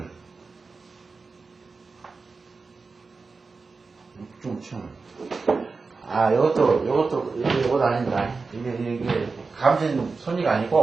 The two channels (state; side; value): quieter; left; 4.3 dB